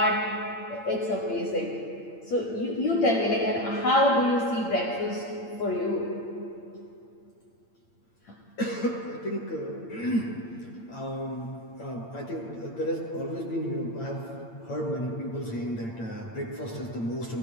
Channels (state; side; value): late; right; 8.8 ms